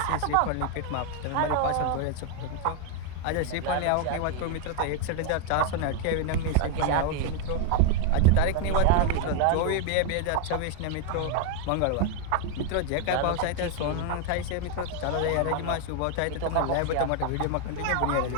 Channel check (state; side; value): different; both; correlation 0.01